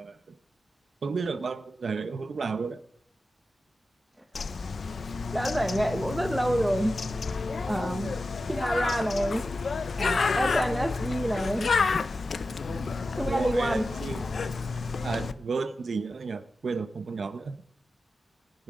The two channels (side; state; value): both; normal; correlation 0.91